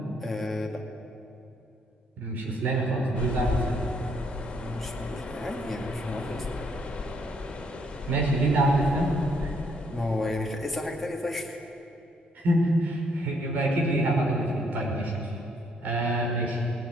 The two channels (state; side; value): normal; both; correlation 0.70